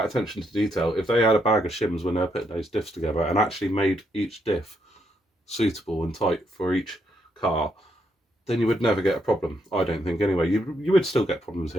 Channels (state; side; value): normal; both; correlation 0.76